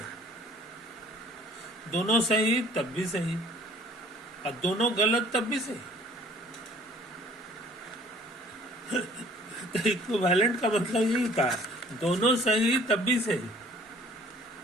दोनों सही तब भी सही और दोनों गलत तब भी सही। तो इक्विवेलेंट का मतलब यही होता है, दोनों सही तब भी सही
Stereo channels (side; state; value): both; normal; correlation 0.54